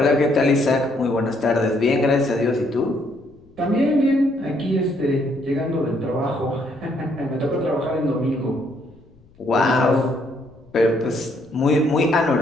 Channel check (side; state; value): left; noise; rumble, 29 dB below the sound